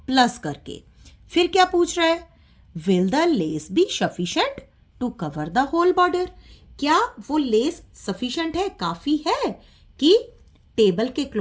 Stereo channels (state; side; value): identical; both; correlation 1.00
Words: प्लस करके। फिर क्या पूछ रहा है, will the lace be sufficient to cover the whole border. क्या वो लेस सफिशिएंट है, काफी है कि टेबल के